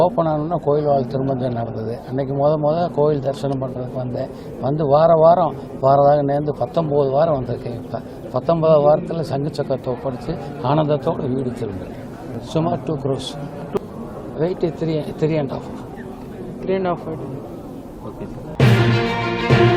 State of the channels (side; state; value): both; identical; correlation 1.00